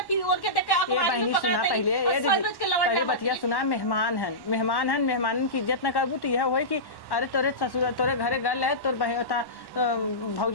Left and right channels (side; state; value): right; late; 1.1 ms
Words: फिर और के देख के आप ये बहनी सुना पहले ये दीदी पहले बतिया सुना मेहमान हन मेहमान की इज्जत न करबू तो यह होई कि अरे तोरे ससुर तोरे घरे गल है तोर बहता